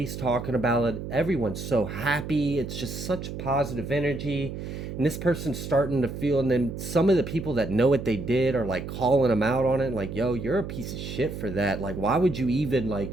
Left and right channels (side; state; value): right; noise; hum, 7 dB below the sound